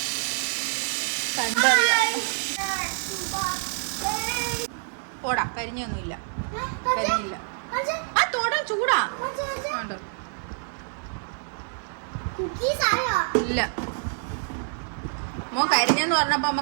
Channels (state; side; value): silent; left; 60 dB below the other